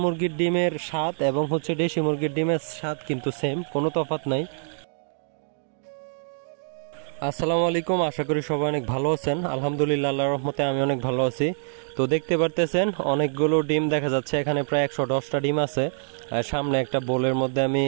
মুরগির ডিমের স্বাদ এবং হচ্ছে দেশি মুরগির ডিমের স্বাদ কিন্তু সেম, কোনো তফাৎ নাই। আসসালামু আলাইকুম, আশা করি সবাই অনেক ভালো আছেন। আলহামদুলিল্লাহ, আল্লাহর রহমতে আমি অনেক ভালো আছি। তো দেখতে পারতেছেন অনেকগুলো ডিম দেখা যাচ্ছে, এখানে প্রায় 110টা ডিম আছে। সামনে একটা বোলের মধ্যে আমি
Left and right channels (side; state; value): left; silent; digital silence